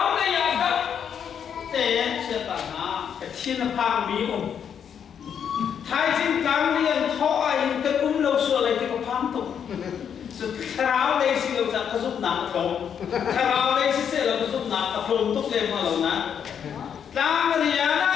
le ya da te chia ta na ka thin phang mi thai jin kang lian tho ai ka lo so lai te ko phang tu thlarau đây xin lỗi rằng có giúp nạp không thlarau đây xin sẽ là có giúp nạp tập trung tốt lên mà lâu na đang người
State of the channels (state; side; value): quieter; right; 8.0 dB